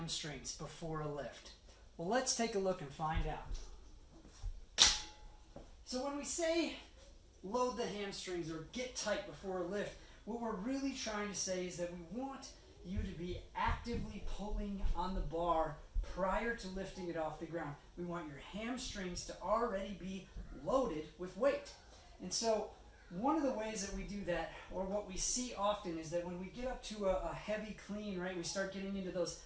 before a lift? Well, let's take a look and find out. So when we say load the hamstrings or get tight before a lift, what we're really trying to say is that we want you to be actively pulling on the bar prior to lifting it off the ground. We want your hamstrings to already be loaded with weight. And so one of the ways that we do that, or what we see often, is that when we get up to a heavy clean, right, we start getting into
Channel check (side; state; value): both; identical; correlation 1.00